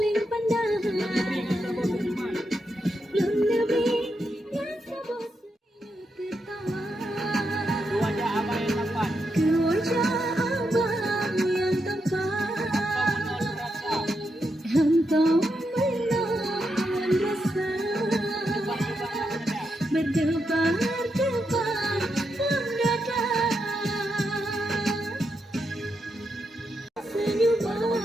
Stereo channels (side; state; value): both; normal; correlation 0.83